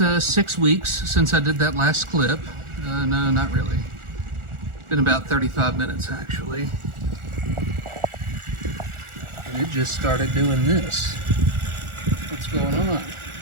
6 weeks since I did that last clip. No, not really. Been about 35 minutes actually. And it just started doing this. What's going on?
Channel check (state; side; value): late; left; 1.4 ms